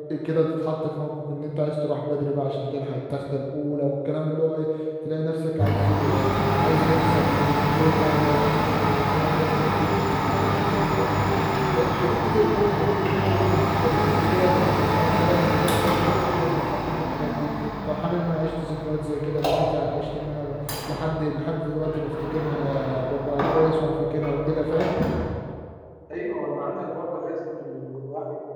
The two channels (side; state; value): both; identical; correlation 1.00